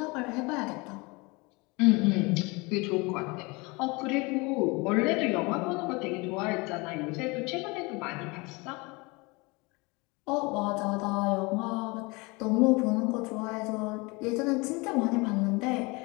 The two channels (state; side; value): quieter; right; 26.3 dB